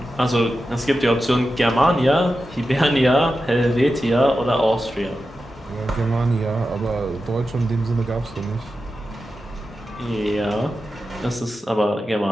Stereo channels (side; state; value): both; normal; correlation 0.91